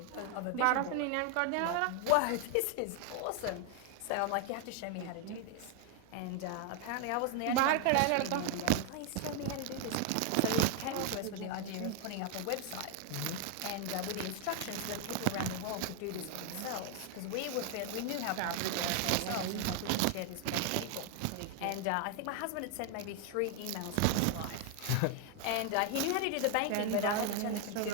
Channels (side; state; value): both; different; correlation 0.00